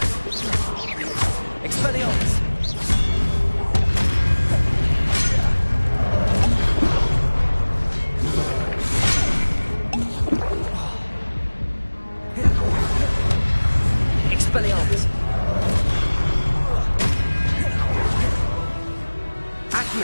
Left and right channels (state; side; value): inverted; both; correlation -1.00